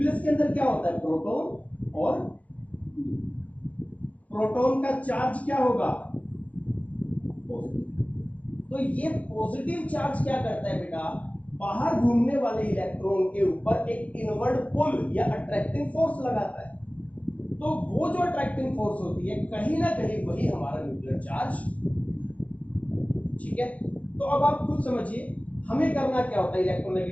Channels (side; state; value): right; late; 0.067 ms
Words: के अंदर क्या होता है, प्रोटॉन और प्रोटॉन का चार्ज क्या होगा, पॉजिटिव। तो ये पॉजिटिव चार्ज क्या करता है बेटा, बाहर घूमने वाले इलेक्ट्रॉन के ऊपर एक इनवर्ड पुल या अट्रैक्टिंग फोर्स लगाता है। तो वो जो अट्रैक्टिंग फोर्स होती है कहीं ना कहीं वही हमारा न्यूक्लियर चार्ज, ठीक है। तो अब आप खुद समझिए हमें करना क्या होता है